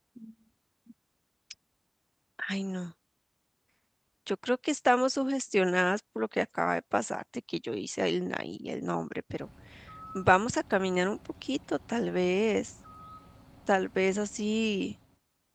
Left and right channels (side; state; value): both; identical; correlation 1.00